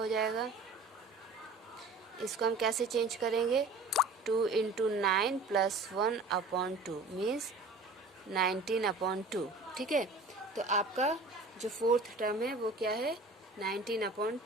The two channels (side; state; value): left; quieter; 3.3 dB